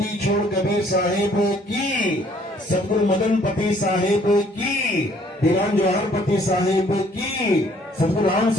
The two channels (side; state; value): both; normal; correlation 0.61